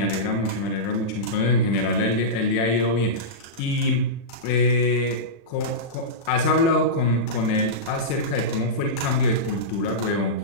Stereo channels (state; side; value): late; right; 36 ms